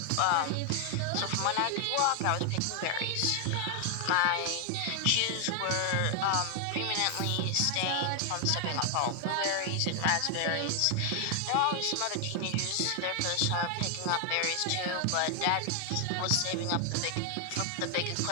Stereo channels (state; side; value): different; both; correlation 0.00